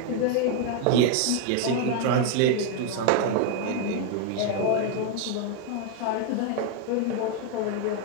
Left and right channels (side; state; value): both; different; correlation 0.01